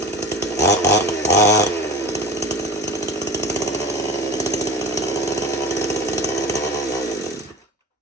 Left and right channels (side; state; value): both; normal; correlation 0.34